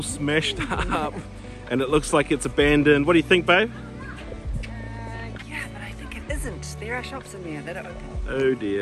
smashed up. And it looks like it's abandoned. What do you think, babe? Yeah, but I think it isn't. There are shops in there that are open. Oh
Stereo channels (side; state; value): both; identical; correlation 1.00